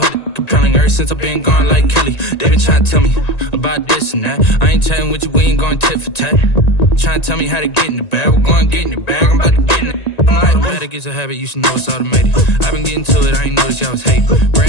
it compelling. Ever since I've been gone like Kelly, they been trying to tell me about this and that. I ain't chatting with you, we ain't going tit for tat. Trying to tell me how to get in the bag. We're going to get in the bag, I'm about to get in it. Automatic is a habit, you should know it's automated. I've been getting to it, I ain't noticed y'all was hating.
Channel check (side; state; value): right; late; 1.9 ms